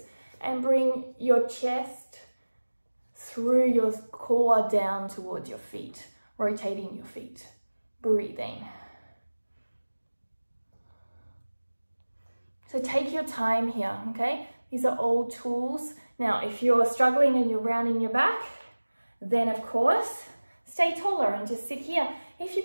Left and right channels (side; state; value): both; inverted; correlation -1.00